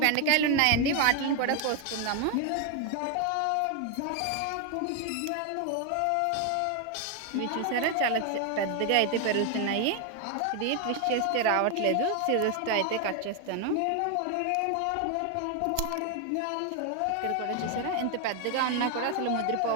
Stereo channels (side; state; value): both; different; correlation 0.01